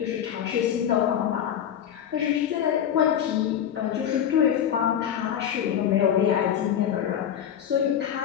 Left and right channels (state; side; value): quieter; right; 9.5 dB